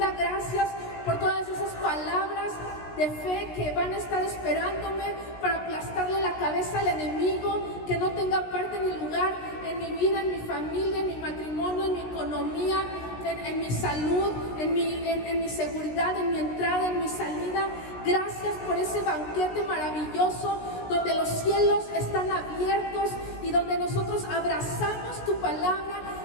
Gracias por todas esas palabras de fe que van a estar esperándome para aplastarle la cabeza al enemigo, que no tenga parte ni lugar en mi vida, en mi familia, en mi matrimonio, en mi economía, en mi salud, en mi seguridad, en mi entrada, en mi salida. Gracias por ese banquete maravilloso donde los cielos están abiertos y donde nosotros abrazamos tu palabra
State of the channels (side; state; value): right; late; 16 ms